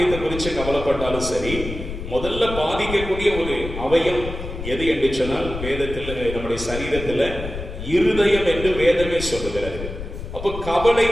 குறித்து கவலைப்பட்டாலும் சரி, முதல்ல பாதிக்கக்கூடிய ஒரு அவயம் எது என்று சொன்னால், வேதத்தில் நம்முடைய சரீரத்துல இருதயம் என்று வேதமே சொல்லுகிறது. அப்ப கவலை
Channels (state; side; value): noise; left; rumble, 8 dB below the sound